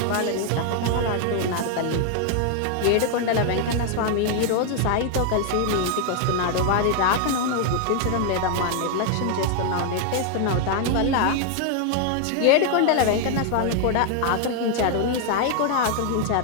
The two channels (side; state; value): both; different; correlation 0.00